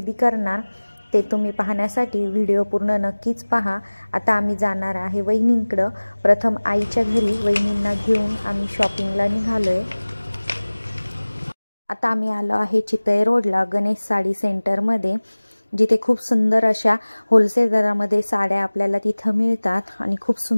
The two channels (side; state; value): both; inverted; correlation -1.00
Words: करणार ते तुम्ही पाहण्यासाठी व्हिडिओ पूर्ण नक्कीच पहा. आता आम्ही जाणार आहे वहिनींकडं. प्रथम आईच्या घरी वहिनींना घेऊन आम्ही शॉपिंगला निघालो आहे. आता आम्ही आलो आहे चितळे रोडला गणेश साडी सेंटरमध्ये, जिथे खूप सुंदर अशा होलसेल दरामध्ये साड्या आपल्याला तिथं मिळतात आणि खूप